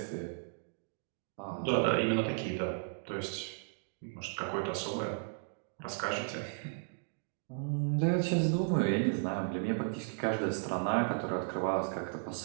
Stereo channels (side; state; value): left; silent; digital silence